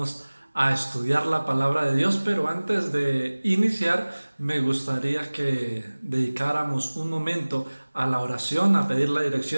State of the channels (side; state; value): both; inverted; correlation -1.00